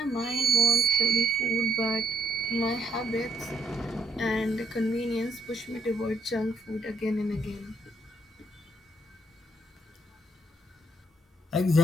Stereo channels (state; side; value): normal; both; correlation 0.73